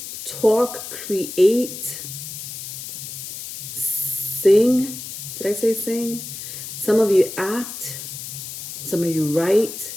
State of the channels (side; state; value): left; noise; hiss, 9 dB below the sound